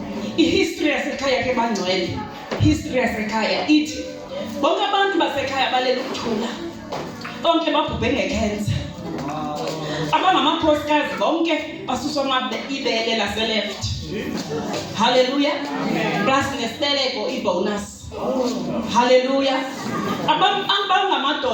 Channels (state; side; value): identical; both; correlation 1.00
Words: I-history yasekhaya ke bangcwele, history yasekhaya ithi bonke abantu basekhaya balela ukuthula bonke babhubhe ngecancer. Abangamakhosikazi bonke basuswa ibele lase-left. Hallelujah. Plus nesibeleko i-bonus. Hallelujah.